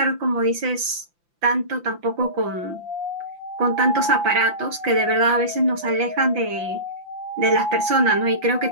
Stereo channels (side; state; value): left; late; 5.8 ms